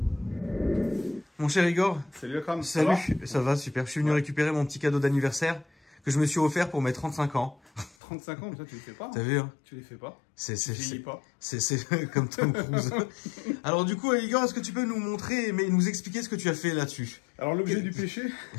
Mon cher Igor. Salut Akram. Salut, ça va super. Je suis venu récupérer mon petit cadeau d'anniversaire que je me suis offert pour mes 35 ans. 35 ans, mais ça tu les fais pas. T'as vu hein? Tu les fais pas. C'est comme Tom Cruise. Alors du coup, Igor, est-ce que tu peux nous montrer, mais nous expliquer ce que tu as fait là-dessus? Alors l'objet du péché.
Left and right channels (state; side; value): drops out; right; at 8.0 s